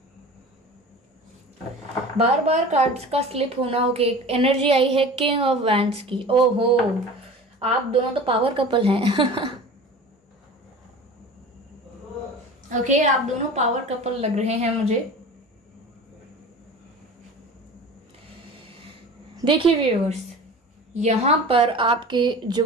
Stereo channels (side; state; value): both; normal; correlation 0.37